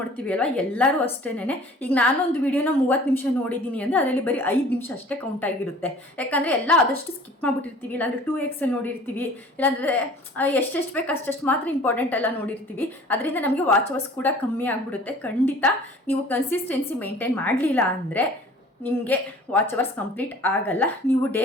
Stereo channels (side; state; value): both; normal; correlation 0.48